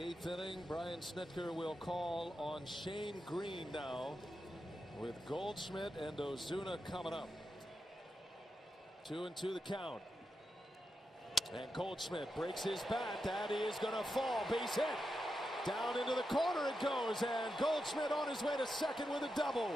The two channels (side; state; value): both; normal; correlation 0.87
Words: 8th inning. Brian Snitker will call on Shane Green now with Goldschmidt and Ozuna coming up. 2-2 the count. And Goldschmidt breaks his bat. That is going to fall. Base hit. Down into the corner it goes. And Goldschmidt on his way to second with a